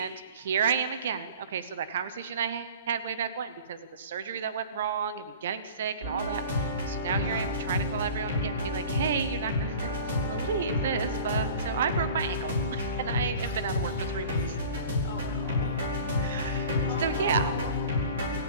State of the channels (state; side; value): inverted; both; correlation -0.41